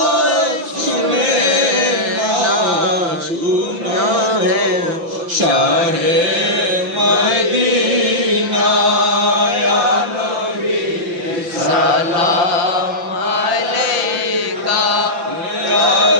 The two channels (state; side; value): late; left; 5.9 ms